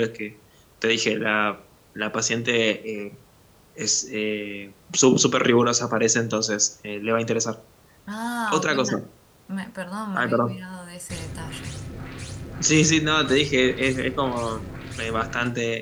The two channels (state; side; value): identical; both; correlation 1.00